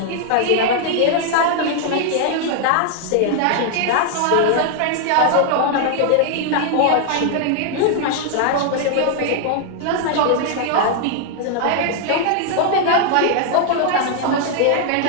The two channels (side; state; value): both; different; correlation 0.00